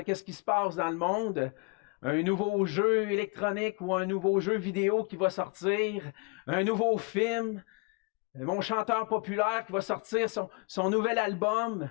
ce qui se passe dans le monde. Un nouveau jeu électronique ou un nouveau jeu vidéo qui va sortir, un nouveau film, mon chanteur populaire qui va sortir son nouvel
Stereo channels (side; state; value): right; quieter; 28.9 dB